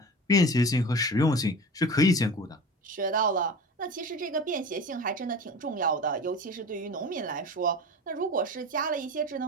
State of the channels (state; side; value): normal; both; correlation 0.34